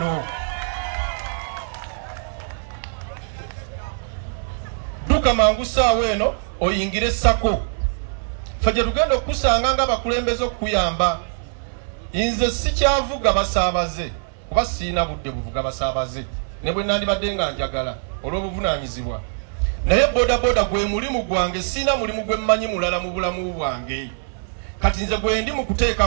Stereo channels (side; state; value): left; silent; 60 dB below the other